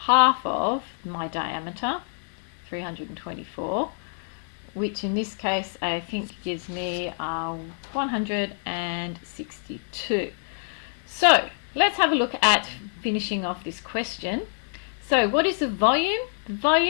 of my diameter, 324, which in this case I think gives me 162. So let's have a look at finishing off this question. So what is the volume? The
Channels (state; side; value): silent; right; digital silence